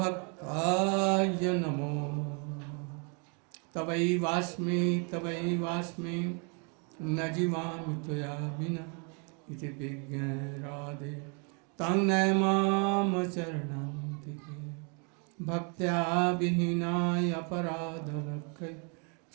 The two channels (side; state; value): left; quieter; 36.8 dB